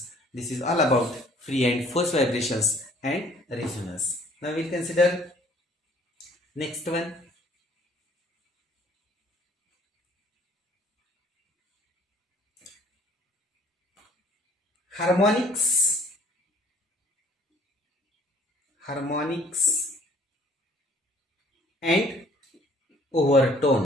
This is all about free and force vibrations and resonance. Now we'll consider next one. Harmonics and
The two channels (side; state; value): both; normal; correlation 0.57